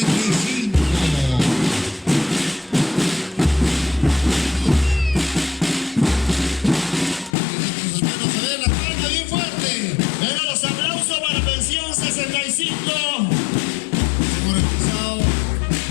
Venga, los aplausos para pensión 65. Hemos realizado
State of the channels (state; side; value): drops out; right; at 7.4 s